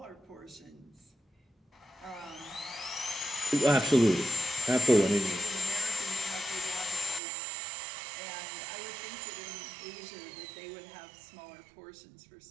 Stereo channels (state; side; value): drops out; left; at 7.2 s